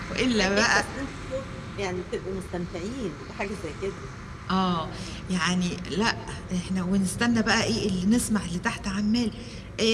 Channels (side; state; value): both; identical; correlation 1.00